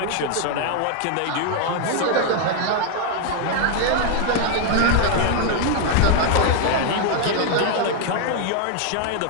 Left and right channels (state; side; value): different; both; correlation 0.00